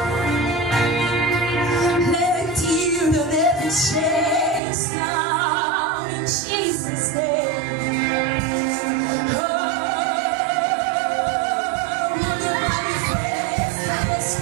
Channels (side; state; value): left; drops out; at 4.6 s